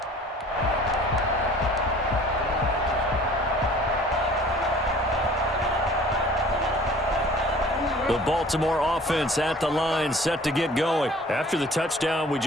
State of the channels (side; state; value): both; normal; correlation 0.49